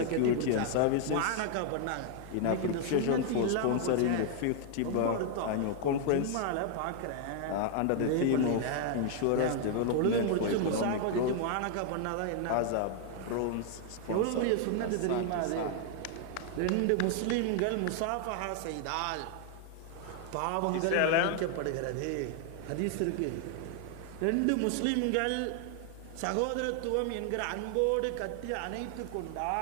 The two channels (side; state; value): both; different; correlation 0.00